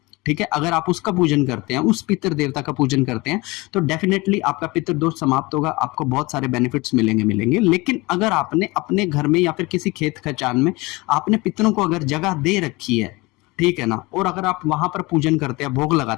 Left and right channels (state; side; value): quieter; right; 23.4 dB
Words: ठीक है। अगर आप उसका पूजन करते हैं, उस पितर देवता का पूजन करते हैं, तो डेफिनेटली आपका पितर दोष समाप्त होगा, आपको बहुत सारे बेनिफिट्स मिलेंगे। लेकिन अगर आपने अपने घर में या फिर किसी खेत खचान में आपने पितरों को अगर जगह दे रखी है, ठीक है ना, और अगर आप वहां पर पूजन करते हैं, भोग